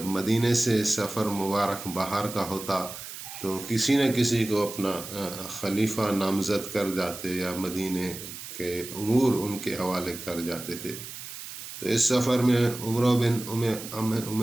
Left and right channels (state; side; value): noise; right; hiss, 11 dB below the sound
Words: مدینے سے سفر مبارک باہر کا ہوتا تو کسی نہ کسی کو اپنا خلیفہ نامزد کر جاتے، یا مدینے کے امور ان کے حوالے کر جاتے تھے۔ تو اس سفر میں عمر بن ام